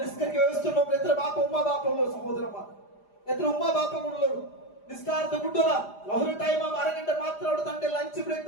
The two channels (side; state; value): right; late; 4.9 ms